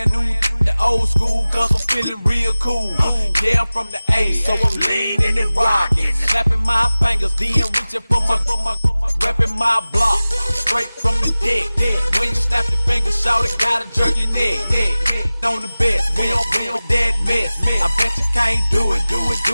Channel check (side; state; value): both; inverted; correlation -0.98